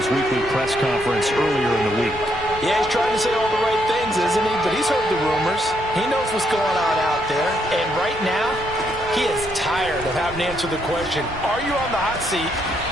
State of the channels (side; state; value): both; normal; correlation 0.75